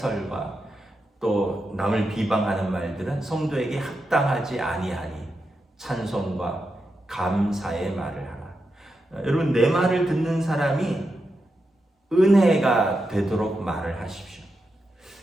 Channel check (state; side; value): normal; both; correlation 0.87